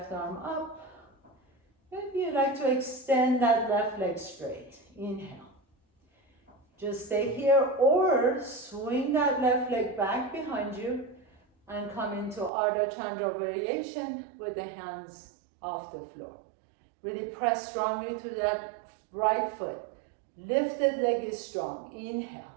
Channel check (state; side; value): drops out; left; at 12.5 s